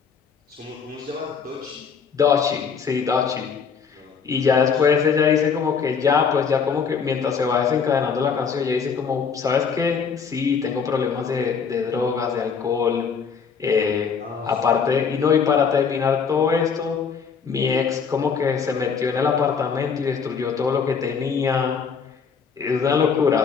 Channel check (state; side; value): quieter; right; 6.1 dB